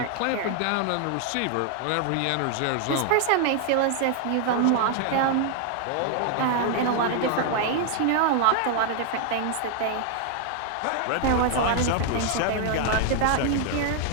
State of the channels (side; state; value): both; different; correlation 0.00